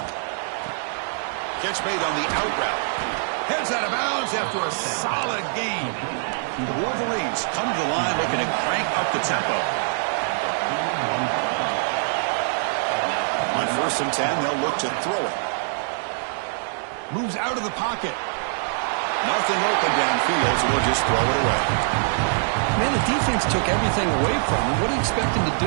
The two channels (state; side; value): silent; left; 63 dB below the other